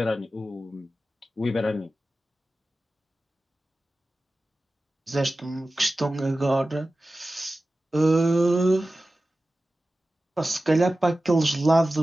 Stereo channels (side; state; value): both; normal; correlation 0.95